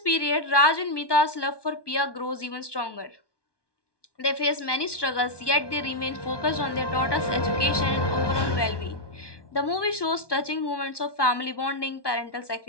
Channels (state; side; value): late; right; 1.2 ms